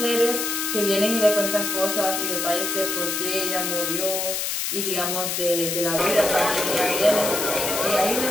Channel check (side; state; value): left; noise; hiss, 1 dB below the sound